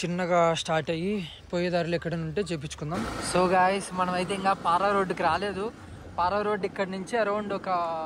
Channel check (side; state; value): both; identical; correlation 1.00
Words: చిన్నగా స్టార్ట్ అయ్యి పోయే దారిలో ఎక్కడైనా ఉంటే చేపించుకుందాం. సో గాయస్ మనం అయితే ఇంకా పారా రోడ్డుకి రాలేదు. పారా రోడ్డు ఇక్కడ నుంచి అరౌండ్ ఒక